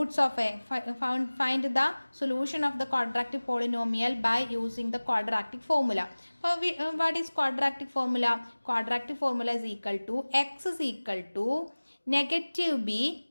of a find the solution of the quadratic polynomial by using the quadratic formula. What is quadratic formula? Quadratic formula is equal to x is equal to negative b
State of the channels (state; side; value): inverted; both; correlation -1.00